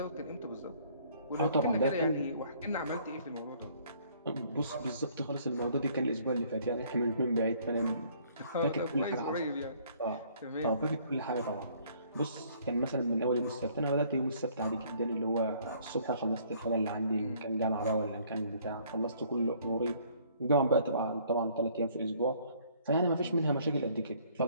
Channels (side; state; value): both; inverted; correlation -0.60